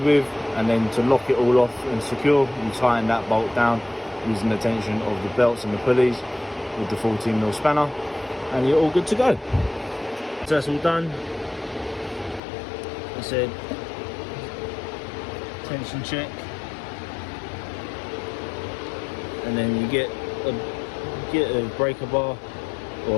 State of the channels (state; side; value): drops out; right; at 12.4 s